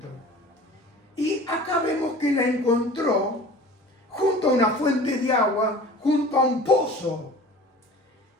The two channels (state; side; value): normal; both; correlation 0.42